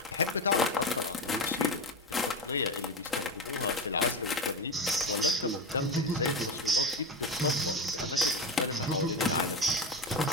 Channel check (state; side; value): normal; both; correlation 0.19